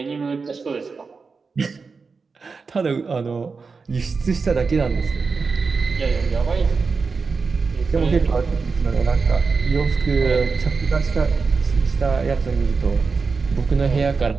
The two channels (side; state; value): left; quieter; 4.7 dB